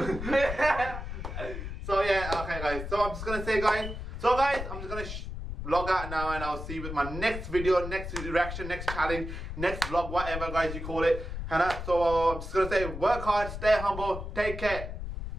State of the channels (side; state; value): left; noise; rumble, 7 dB below the sound